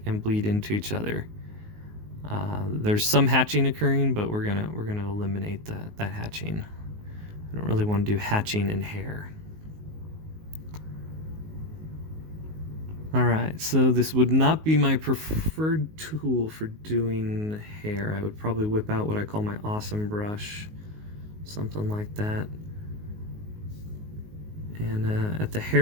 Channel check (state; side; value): late; left; 19 ms